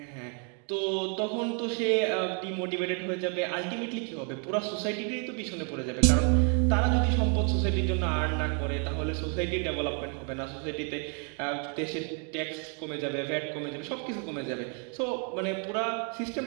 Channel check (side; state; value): left; quieter; 39.0 dB